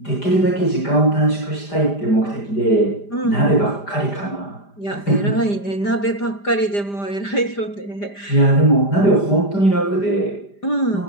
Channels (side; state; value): right; late; 5.0 ms